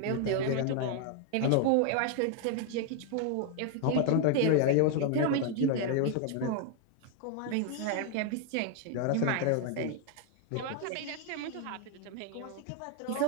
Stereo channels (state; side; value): different; both; correlation 0.00